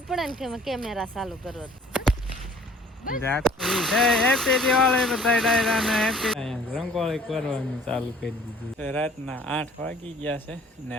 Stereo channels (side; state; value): both; normal; correlation 0.53